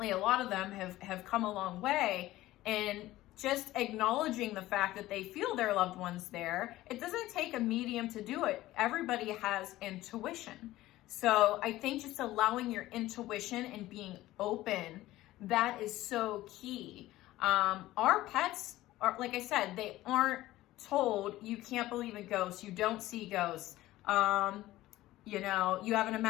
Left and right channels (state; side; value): quieter; right; 16.2 dB